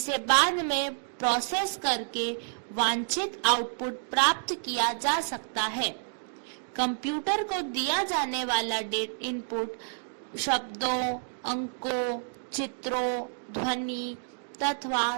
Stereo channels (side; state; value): left; silent; 58 dB below the other